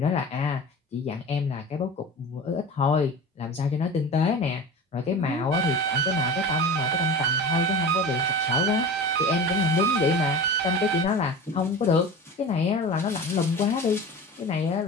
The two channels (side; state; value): both; normal; correlation 0.33